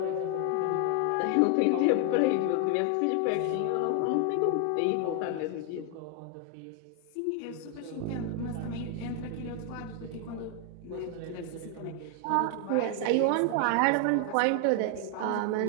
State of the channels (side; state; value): both; different; correlation 0.00